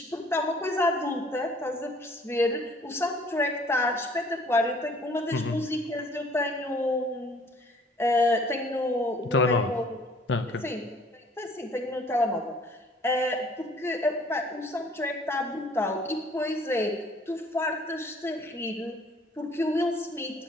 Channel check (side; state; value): both; normal; correlation 0.56